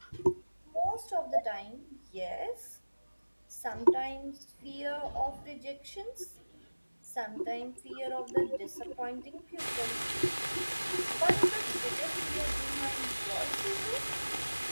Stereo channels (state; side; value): inverted; both; correlation -1.00